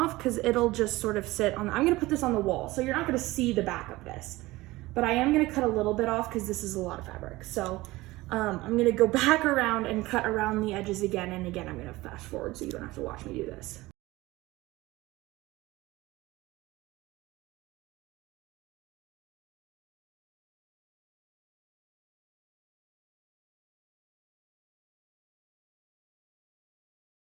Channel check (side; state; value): left; quieter; 19.4 dB